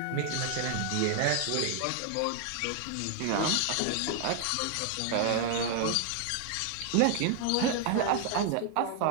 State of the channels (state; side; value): different; both; correlation 0.00